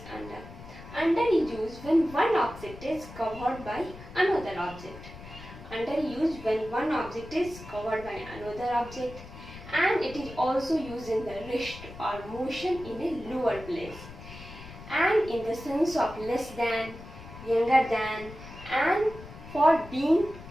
under. Under is used when one object is covered by another object. Under is used when one object is covered by another object, and it is also used in the rest or motion in a lower place, and in the sense of less than, younger than, and for being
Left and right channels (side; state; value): left; noise; rumble, 15 dB below the sound